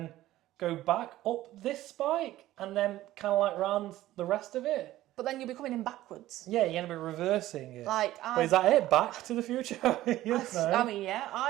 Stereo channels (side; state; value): left; quieter; 15.1 dB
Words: go back up this spike, and then kind of like round the rest of it. But then you'll be coming in backwards. Yeah, you're going to be reversing it. Like, But is that it? Back to the Future? Yes, no. I mean, yeah,